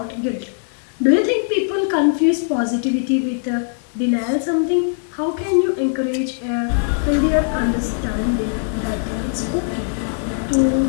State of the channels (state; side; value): silent; right; 64 dB below the other